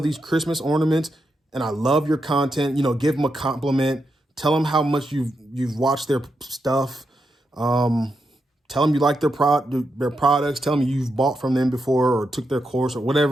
Christmas ornaments and I love your content. You know, give them a compliment. Tell them how much you've watched their stuff. Tell them you like their products. Tell them you've bought from them before or took their course or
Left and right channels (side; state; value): both; normal; correlation 0.85